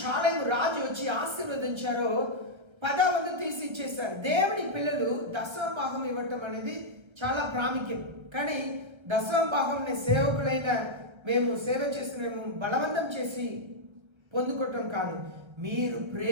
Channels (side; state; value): left; late; 1.3 ms